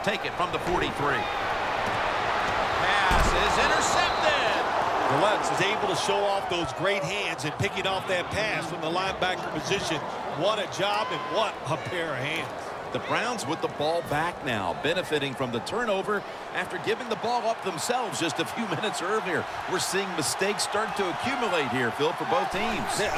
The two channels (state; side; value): identical; both; correlation 1.00